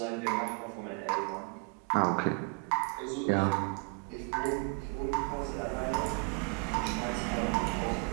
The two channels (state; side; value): quieter; left; 32.9 dB